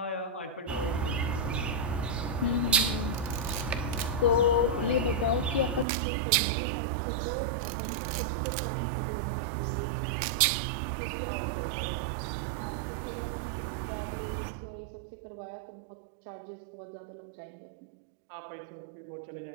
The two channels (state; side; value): drops out; left; at 5.9 s